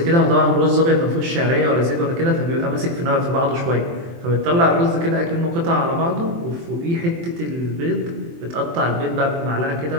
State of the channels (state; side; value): late; left; 23 ms